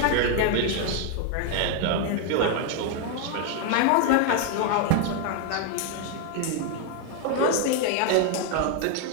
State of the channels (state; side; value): different; both; correlation 0.00